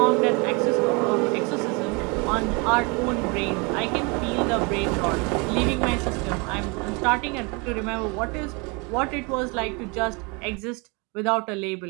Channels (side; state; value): left; quieter; 30.2 dB